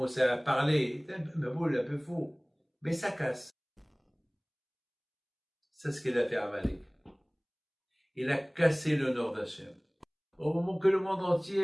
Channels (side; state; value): both; identical; correlation 1.00